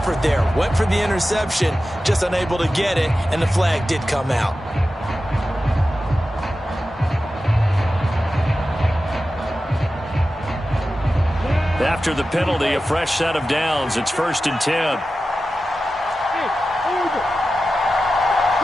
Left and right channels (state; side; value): normal; both; correlation 0.93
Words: there. Went for the interception, just unable to get it, and the flag did come out. After the penalty, a fresh set of downs. It's 1st and 10. Hey, over.